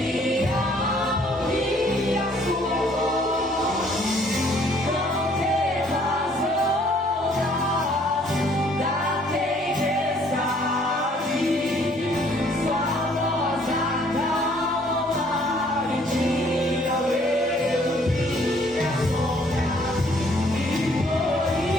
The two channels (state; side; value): normal; both; correlation 0.61